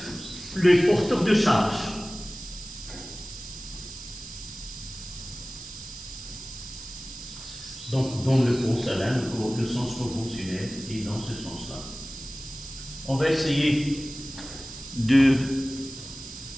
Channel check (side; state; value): right; noise; hiss, 13 dB below the sound